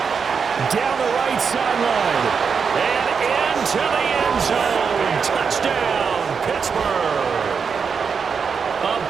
Down the right sideline. And into the end zone. Touchdown, Pittsburgh. A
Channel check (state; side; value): quieter; left; 6.0 dB